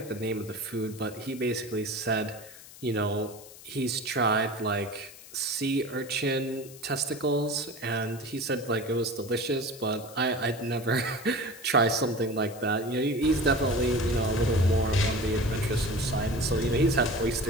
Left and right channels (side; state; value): left; noise; hiss, 18 dB below the sound